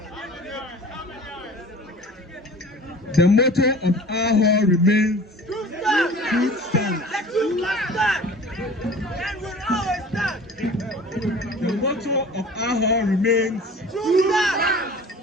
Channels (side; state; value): both; normal; correlation 0.43